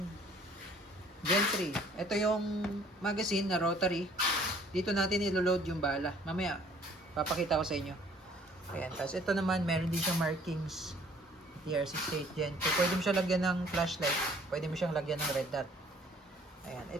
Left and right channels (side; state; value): both; normal; correlation 0.57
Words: Gen 3. Ito yung magazine na rotary. Dito natin ilo-load yung bala. Mamaya, papakita ko sa inyo. Ayan. Tapos ito naman, meron din siyang markings. TR68 Gen 2. Pwede mo siya lagyan ng flashlight. Pwede mo siyang lagyan ng red dot. Ayan.